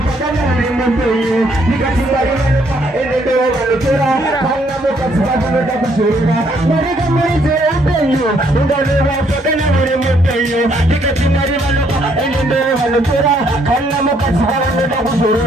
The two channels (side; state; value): both; normal; correlation 0.69